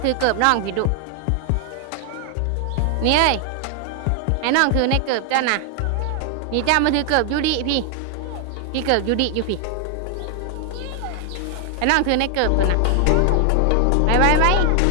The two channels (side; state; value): both; different; correlation 0.00